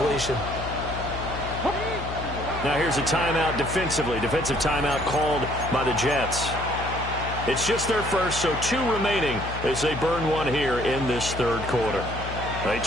Now here's a timeout defensively. Defensive timeout called by the Jets. It's just their first, so 2 remaining as they burn one here in this 3rd quarter. They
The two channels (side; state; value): left; noise; hum, 8 dB below the sound